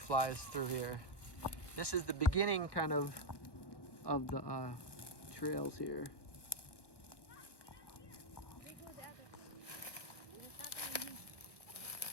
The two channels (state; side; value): late; right; 1.2 ms